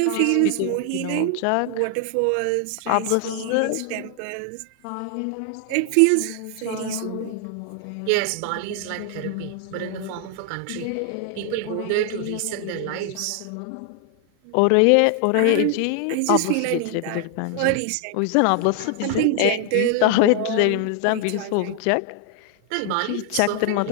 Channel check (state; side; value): different; both; correlation 0.00